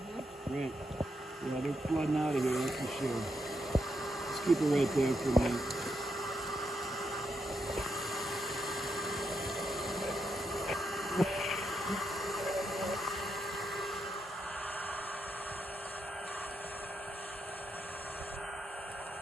Great. Yeah, they're flooding out of here, that's for sure. Just keep it right there for a minute.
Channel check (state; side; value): normal; both; correlation 0.82